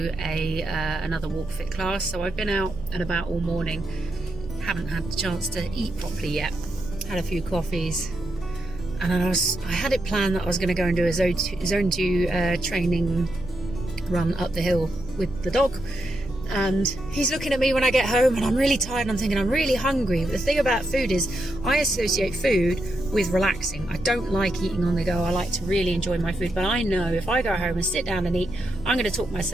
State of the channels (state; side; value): noise; right; hum, 15 dB below the sound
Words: another walk fit class. So I've been out and about all morning, haven't had the chance to eat properly yet. Had a few coffees, and I had it planned that I was going to go and do a zone 2 training run up the hill with the dog, and he's looking at me when I get home and I'm really tired and I'm thinking I'm really hungry. But the thing about food is I associate food with relaxing. I don't like eating on the go. I like to really enjoy my food, but I know if I go home and sit down and eat, I'm going to talk